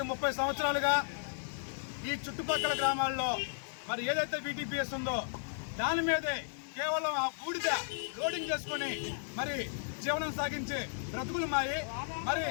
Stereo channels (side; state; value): right; silent; digital silence